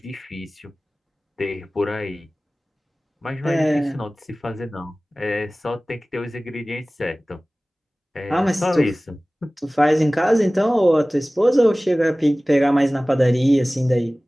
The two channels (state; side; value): normal; both; correlation 0.98